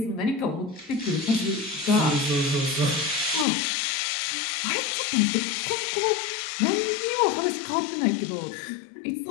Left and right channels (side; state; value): right; drops out; at 3.5 s